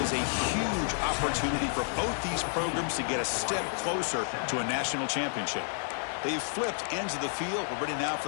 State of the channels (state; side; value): silent; right; digital silence